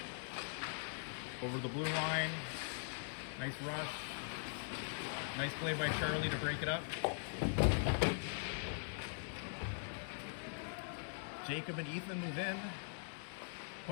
Over the blue line. Nice rush. Nice play by Charlie to break it up. Jacob and Ethan move in.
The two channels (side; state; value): right; silent; digital silence